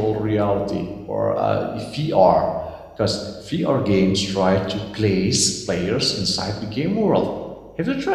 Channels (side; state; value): both; identical; correlation 1.00